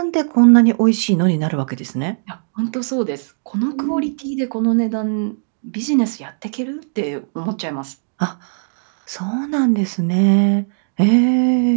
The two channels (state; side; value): silent; left; digital silence